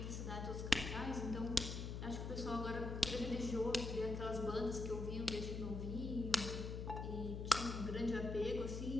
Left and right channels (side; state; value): left; noise; hum, 4 dB below the sound